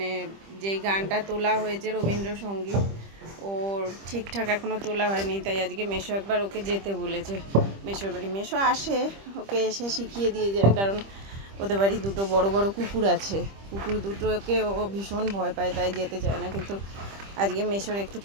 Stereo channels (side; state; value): left; late; 25 ms